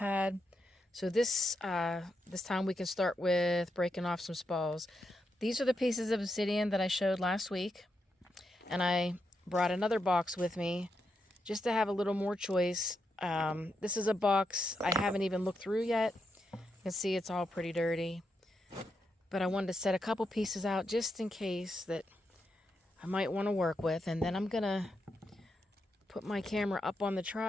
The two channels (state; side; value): normal; both; correlation 0.83